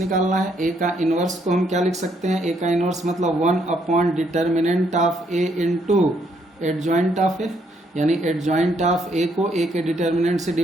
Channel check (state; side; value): normal; both; correlation 0.72